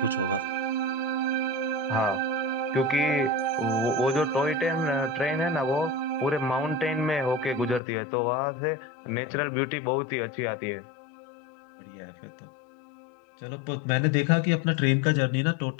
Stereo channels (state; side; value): drops out; right; at 7.8 s